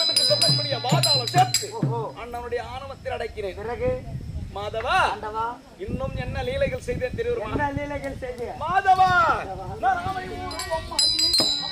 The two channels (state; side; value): identical; both; correlation 1.00